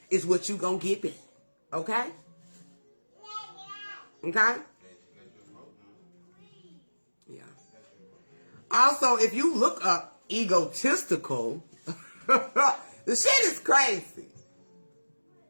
is what you're going to get back. Okay? Okay? Yeah. Also, if you look up egotistical, the shit is crazy.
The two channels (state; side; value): inverted; both; correlation -1.00